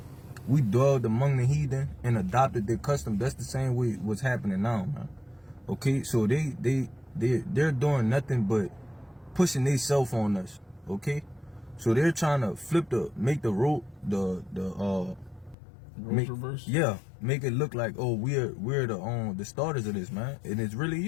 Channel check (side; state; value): right; drops out; at 15.6 s